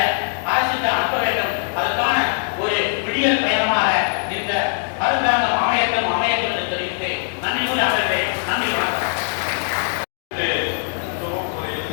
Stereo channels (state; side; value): silent; right; digital silence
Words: அரசுக்கு அனுப்ப வேண்டும். அதற்கான ஒரு விடியல் பயணமாக இந்த அரசாங்கம் அமையட்டும் என்று தெரிவித்து நன்றி கூறி அமர்வேன். நன்றி, வணக்கம்.